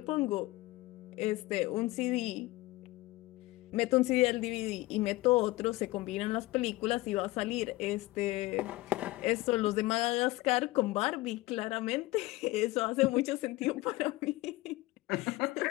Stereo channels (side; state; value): right; quieter; 19.7 dB